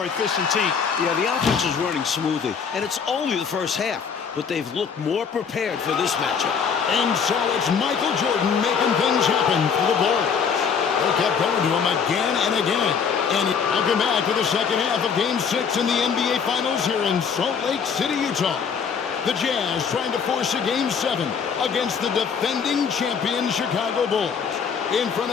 efficient team. Yeah, the offense is running smoothly, and it's only the first half, but they've looked more prepared for this matchup. And so it's Michael Jordan making things happen for the Bulls. They kept going to him again and again. And welcome back to the second half of Game 6 in the NBA Finals here in Salt Lake City, Utah. The Jazz trying to force a Game 7 against the defending champion Chicago Bulls in front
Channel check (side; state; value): right; quieter; 6.5 dB